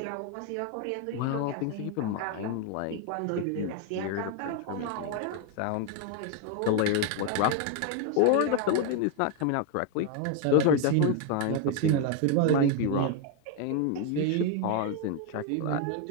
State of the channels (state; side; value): different; both; correlation 0.01